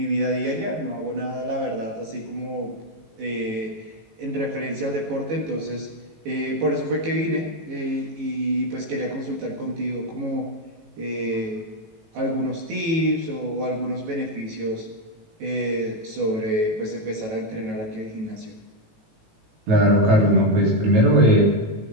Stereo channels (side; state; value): left; late; 18 ms